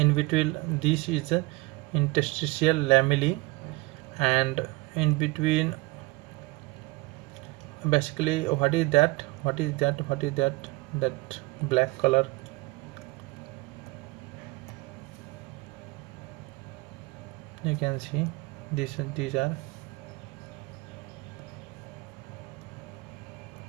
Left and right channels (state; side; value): quieter; left; 23.1 dB